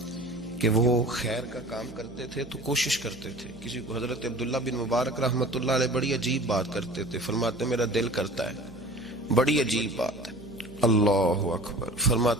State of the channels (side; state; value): right; noise; hum, 18 dB below the sound